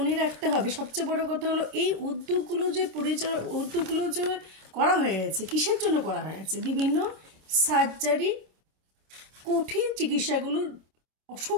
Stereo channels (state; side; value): late; left; 25 ms